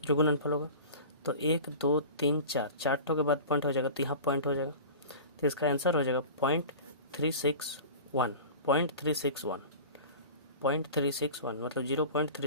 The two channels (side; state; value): both; inverted; correlation -0.36